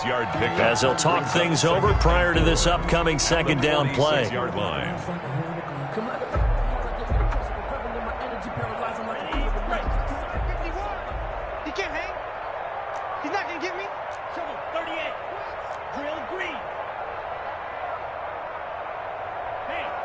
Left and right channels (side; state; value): both; identical; correlation 1.00